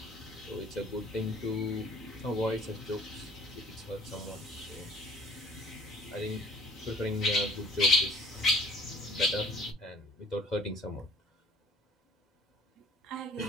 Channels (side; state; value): both; normal; correlation 0.52